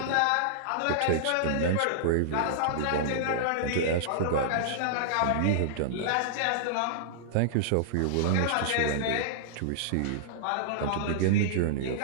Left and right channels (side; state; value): both; different; correlation -0.02